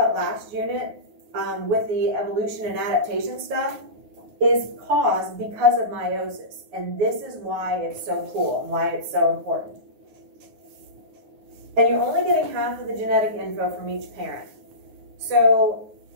last unit with the evolution and adaptation stuff is caused because of meiosis. And this is why it's so cool and why it's so important. And you're only getting half of the genetic info from each parent. So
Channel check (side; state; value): left; late; 9.5 ms